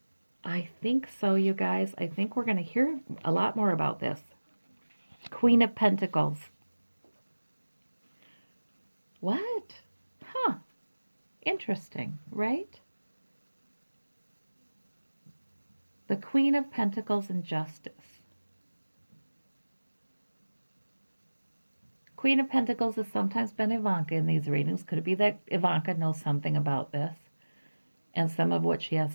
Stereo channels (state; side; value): inverted; both; correlation -1.00